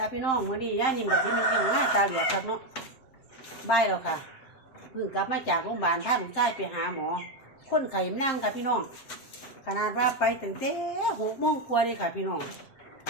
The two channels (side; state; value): right; late; 7.6 ms